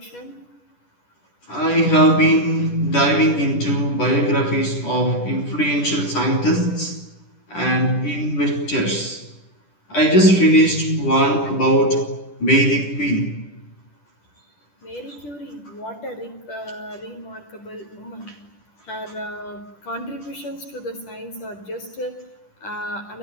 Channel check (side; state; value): right; late; 10 ms